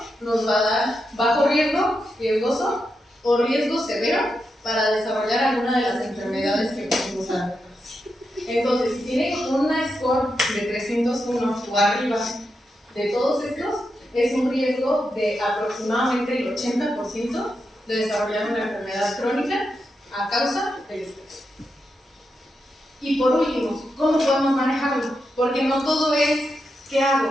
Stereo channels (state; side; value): normal; both; correlation 0.86